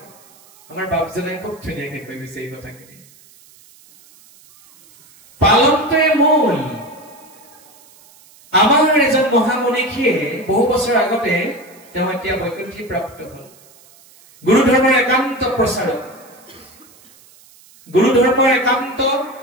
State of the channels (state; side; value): noise; right; hiss, 26 dB below the sound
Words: আমাৰ বাপজনে খুব ধুনীয়াকৈ কৈ গৈছে এই কথাখিনি পালনটোৱে মূল আমাৰ এজন মহামনীষীয়ে বহু বছৰ আগতে তেওঁ এতিয়া বৈকুণ্ঠী প্ৰাপ্ত হল গুৰু ধৰ্মৰ একান্ত প্ৰচাৰক গুৰু ধৰ্মৰ একান্ত